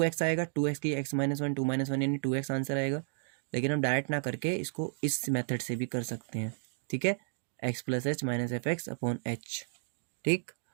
आएगा, 2x की x माइनस 1 2 माइनस 1 यानी 2x आंसर आएगा, लेकिन हम डायरेक्ट ना करके इसको इस मेथड से भी कर सकते हैं, ठीक है, x plus H minus F x upon h. ठीक,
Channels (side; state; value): left; silent; digital silence